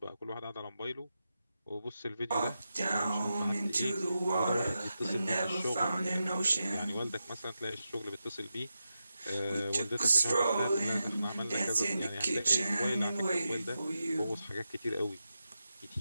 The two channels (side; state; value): both; inverted; correlation -0.89